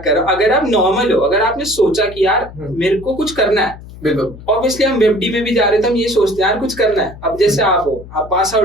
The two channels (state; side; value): noise; left; hum, 16 dB below the sound